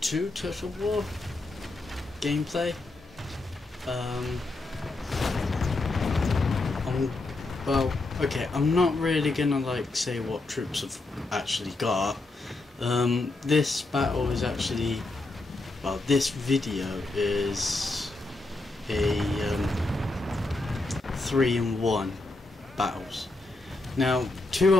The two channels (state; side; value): quieter; right; 3.1 dB